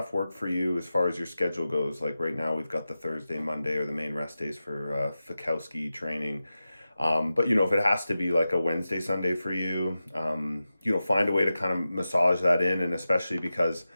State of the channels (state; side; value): inverted; both; correlation -0.93